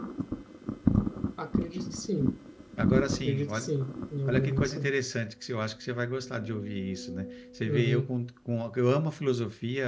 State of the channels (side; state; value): both; identical; correlation 1.00